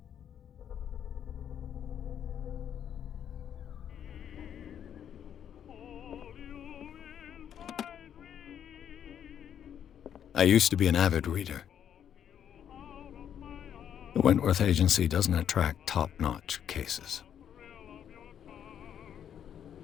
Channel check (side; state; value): right; quieter; 9.2 dB